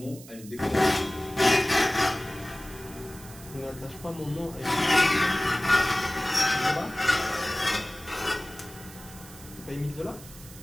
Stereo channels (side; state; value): right; noise; hiss, 18 dB below the sound